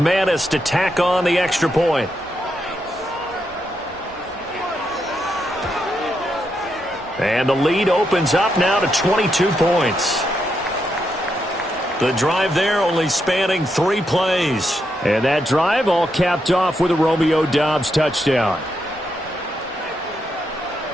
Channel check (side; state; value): both; normal; correlation 0.82